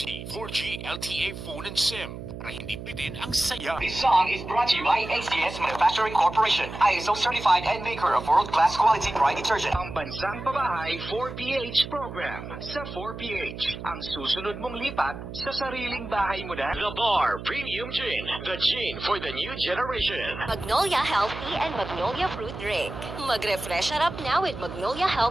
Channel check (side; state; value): right; noise; hum, 10 dB below the sound